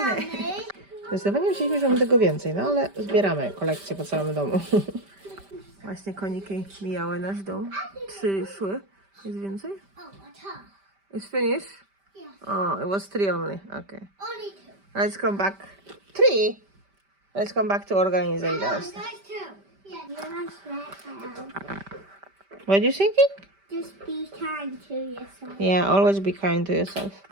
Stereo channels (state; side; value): late; left; 5.1 ms